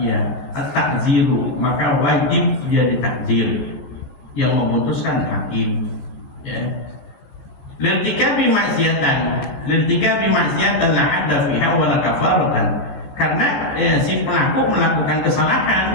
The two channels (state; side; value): late; right; 15 ms